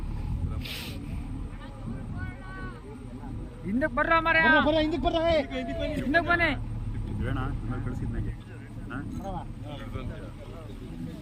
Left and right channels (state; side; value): identical; both; correlation 1.00